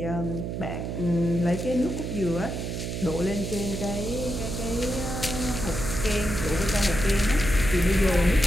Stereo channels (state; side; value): noise; right; hum, 4 dB below the sound